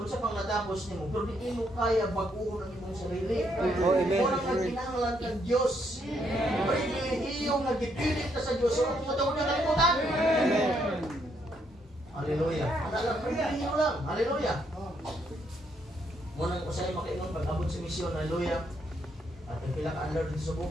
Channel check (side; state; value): both; normal; correlation 0.74